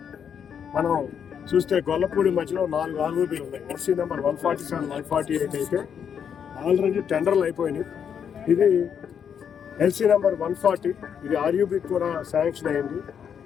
మనం చూస్తే గొల్లపూడి మధ్యలో 4 ఆర్ఓబీలు ఉన్నాయి. ఎస్సీ నెంబర్ 147, 148 అయితే ఆల్రెడీ టెండర్లు అయిపోయినాయి. ఇది ఎల్సీ నెంబర్ 140, ఇది ఆర్యూబీకి కూడా శాంక్షన్ అయింది.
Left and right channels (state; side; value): quieter; right; 7.8 dB